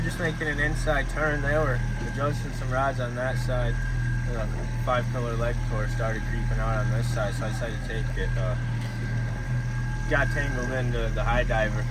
just making an inside turn. They were adjusting some rods on that side. The 5-pillar leg core started creeping out on this side, so I decided to take it. Got tangled into the high diver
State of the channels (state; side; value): identical; both; correlation 1.00